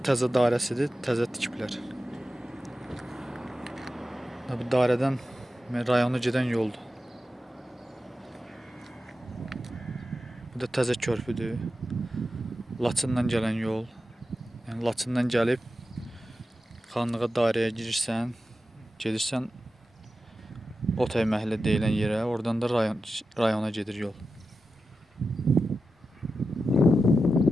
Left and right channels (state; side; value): normal; both; correlation 0.91